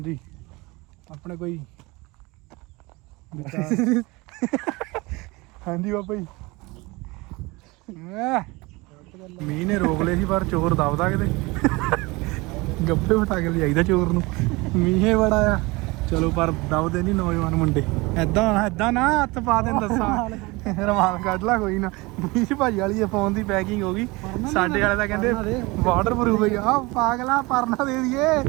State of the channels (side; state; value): left; quieter; 23.8 dB